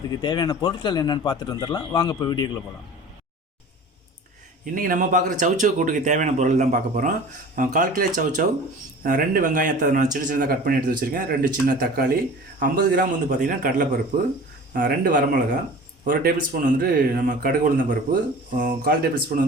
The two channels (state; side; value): normal; both; correlation 0.40